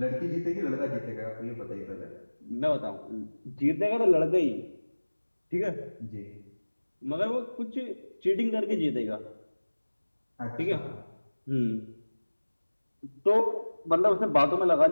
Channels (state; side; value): inverted; both; correlation -1.00